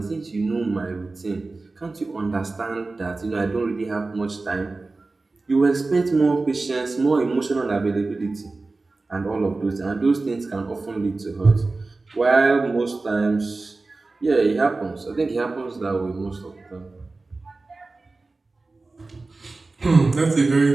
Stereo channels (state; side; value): quieter; left; 3.5 dB